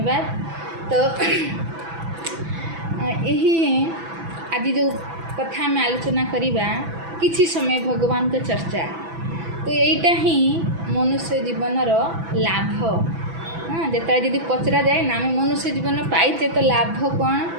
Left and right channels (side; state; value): left; late; 6.0 ms